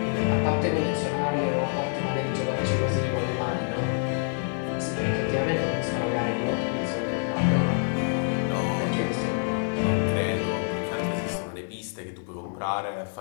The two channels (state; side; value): silent; right; digital silence